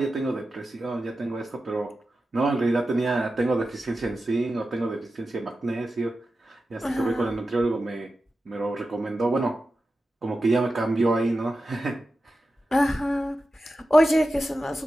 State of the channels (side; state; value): both; normal; correlation 0.92